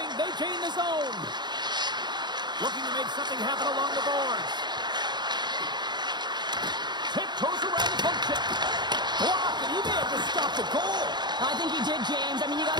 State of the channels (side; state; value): left; late; 0.21 ms